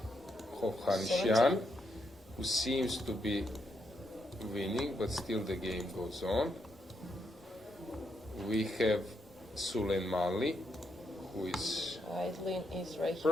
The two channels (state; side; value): normal; both; correlation 0.79